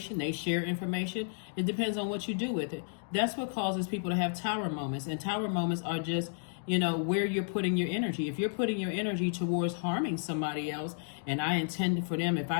they share information. It depends on what you do with it. That's what causes people to have tower moments. And tower moments are just where you're putting your energy. If you're putting your energy towards harming somebody else, and I intended for them,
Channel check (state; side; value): silent; right; digital silence